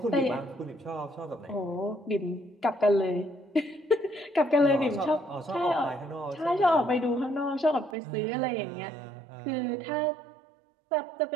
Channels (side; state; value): left; drops out; at 8.0 s